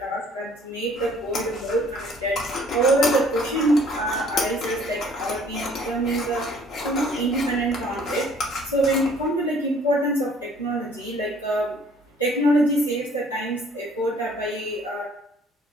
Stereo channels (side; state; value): both; normal; correlation 0.57